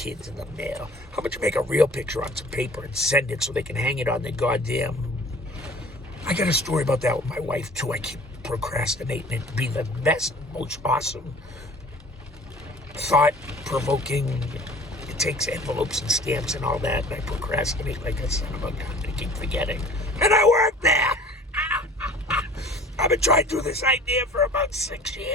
in the mail. How about you make a real picture on some paper and send it so they can hang it on their goddamn... I got a story about that with my wife, too. I keep procrastinating it to be the best, most awesome, thought-provoking... It takes envelopes and stamps and all that, and I procrastinate like a son of a gun. I keep forgetting. And I work there! I've been trying to do this idea for about 6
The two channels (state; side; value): normal; both; correlation 0.47